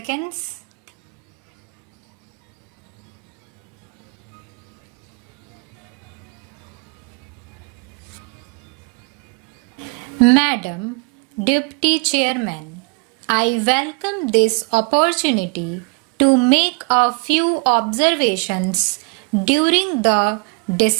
Madam Deputy Chairman, I welcome this opportunity to make a few observations during the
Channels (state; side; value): quieter; left; 31.3 dB